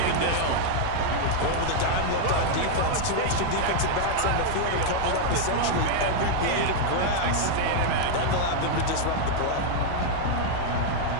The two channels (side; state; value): both; different; correlation 0.00